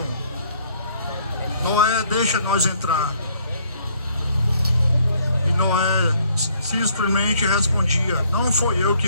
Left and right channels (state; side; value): inverted; both; correlation -0.64